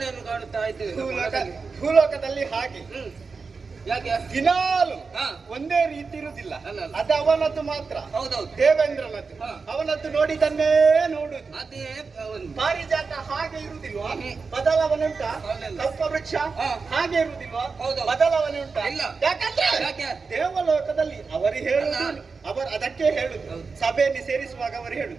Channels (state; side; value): quieter; left; 4.7 dB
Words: ಕಾಣುತ್ತಾ ಇದ್ದೇವೆ ಭೂಲೋಕದಲ್ಲಿ. ಹಾಗೆ ಯಾಕೆ ದಿನಾಲು ಒಂದೇ ರೀತಿ ಇರುವುದಿಲ್ಲ. ಅದು ಅವನದ್ದು ಮಾತ್ರ. ಹೌದೌದು, ದೇವೇಂದ್ರನದ್ದು. ಅವನದ್ದು ನೋಡಿದನ್ನೇ ನೋಡುದು. ಅದೇ ಪಾರಿಜಾತ ಹಾಗೆ ಇರುವುದಿಲ್ವಾ? ಬದಲಾವಣೆ ಉಂಟಾ? ಕಲ್ಪವೃಕ್ಷ ಹಾಗೆ ಇರುವುದಿಲ್ವಾ? ಬದಲಾವಣೆ ಉಂಟಾ? ಯಾಕಂದ್ರೆ ದೇವಲೋಕದಲ್ಲಿ ಅವರು ಹೇಳುದು, ಅದಕ್ಕೆ ಹೇಳುದು. ಸಭೆಯಲ್ಲಿ ಸೇರಿಸುವಾಗ ಅವರು